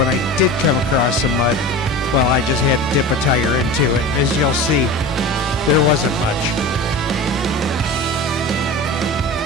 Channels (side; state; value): both; normal; correlation 0.32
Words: I did come across some mud, well, I just had to dip a tire into it. As you'll see, there wasn't much.